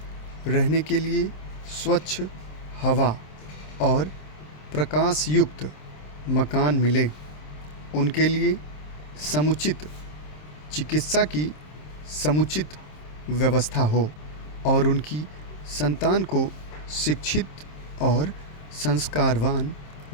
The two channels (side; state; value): right; late; 27 ms